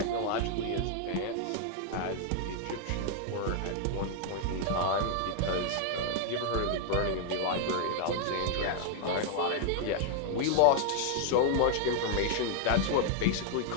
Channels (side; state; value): both; different; correlation 0.00